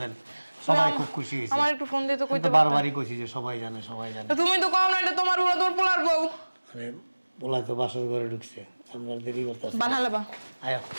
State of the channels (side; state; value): both; inverted; correlation -1.00